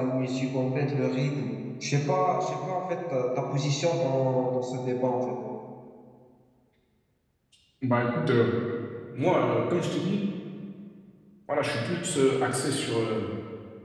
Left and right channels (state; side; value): identical; both; correlation 1.00